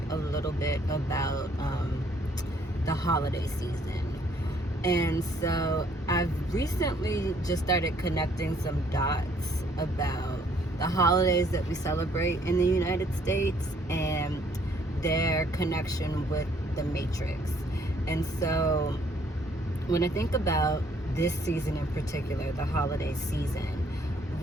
a little bit about the holiday season. And so I've recently just started connecting some dots about the holidays that we celebrate in the United States and their connection with the Matrix. And so when I think about this season in particular, the holiday season,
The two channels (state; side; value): normal; both; correlation 0.64